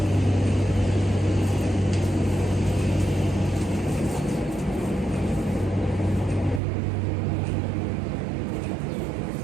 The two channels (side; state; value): left; drops out; at 6.6 s